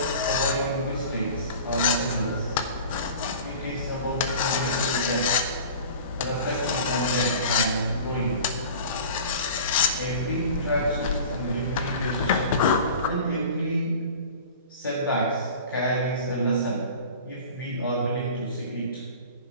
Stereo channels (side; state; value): both; inverted; correlation -0.40